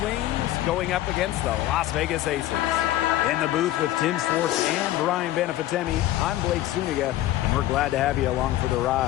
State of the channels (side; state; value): right; quieter; 14.4 dB